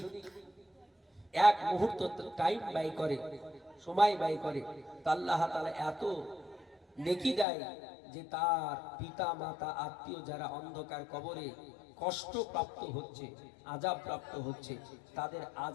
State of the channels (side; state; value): right; drops out; at 7.5 s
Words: এক মুহূর্ত টাইম ব্যয় করে, সময় ব্যয় করে, তা আল্লাহ তাআলা এত নেকি দেয় যে তার পিতা মাতা আত্মীয় যারা অন্ধকার কবরে কষ্ট প্রাপ্ত হচ্ছে, আযাব প্রাপ্ত হচ্ছে, তাদের